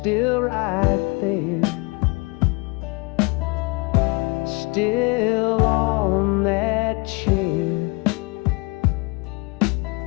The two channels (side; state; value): right; quieter; 28.0 dB